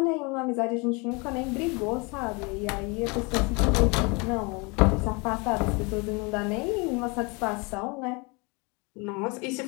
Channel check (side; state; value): right; quieter; 29.3 dB